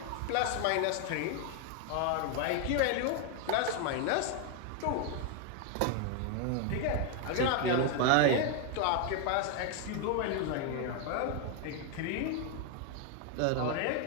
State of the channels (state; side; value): different; both; correlation 0.01